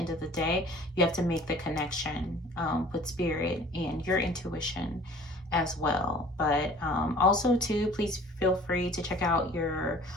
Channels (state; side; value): normal; both; correlation 0.49